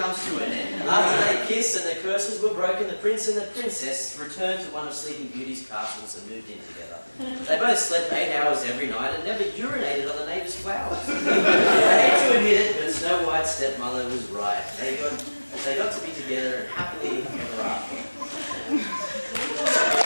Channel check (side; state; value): both; inverted; correlation -1.00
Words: to an end. After they kissed and the curses were broken, the prince and the princess returned to one of Sleeping Beauty's castles and moved in together. They both slept 8 hours every night and never urinated on the neighbour's flowers. I hate to admit it, but Snow White's stepmother was right. They got to be together and happily ever after.